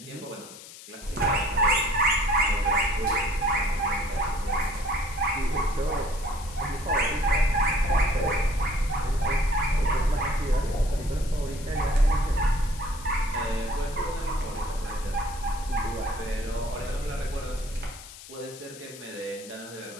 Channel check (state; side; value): noise; left; hiss, 16 dB below the sound